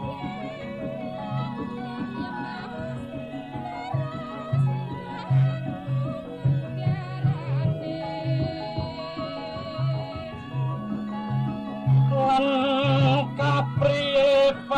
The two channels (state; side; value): identical; both; correlation 1.00